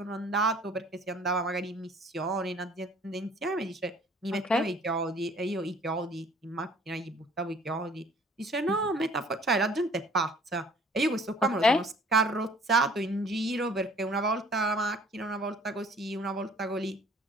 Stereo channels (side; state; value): both; normal; correlation 0.54